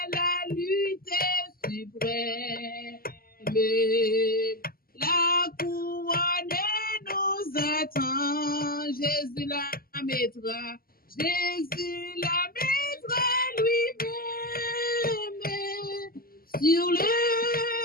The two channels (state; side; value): late; right; 0.42 ms